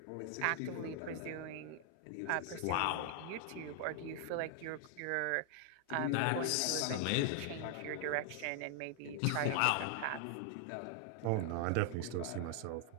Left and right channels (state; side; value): different; both; correlation 0.00